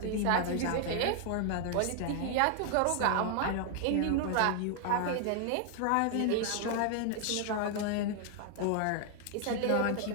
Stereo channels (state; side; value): different; both; correlation 0.00